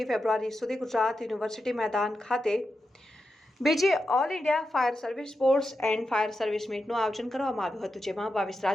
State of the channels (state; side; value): normal; both; correlation 0.89